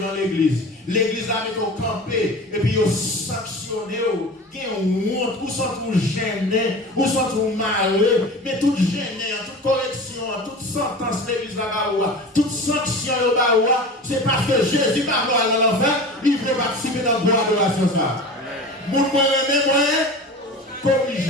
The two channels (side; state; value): both; normal; correlation 0.34